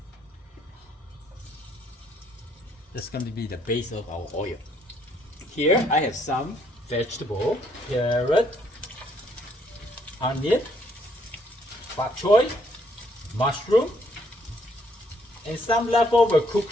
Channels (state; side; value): normal; both; correlation 0.69